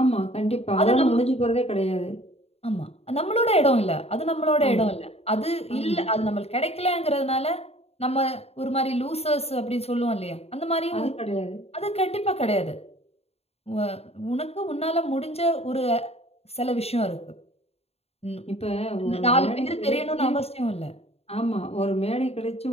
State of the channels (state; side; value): late; right; 0.30 ms